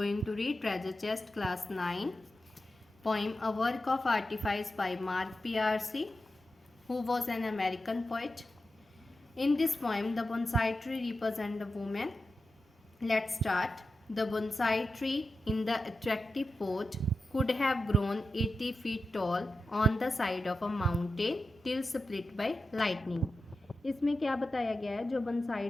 to read Treasure Chest Class 9 poem A Work of Artifice by Mark P.R.C., who was an American poet. In this poem, the bonsai tree represents a woman. Let's start. The bonsai tree in the attractive pot could have grown 80 feet tall on the side of a mountain till split by lightning. इसमें क्या बताया गया है, जो बंसाई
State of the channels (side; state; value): both; normal; correlation 0.91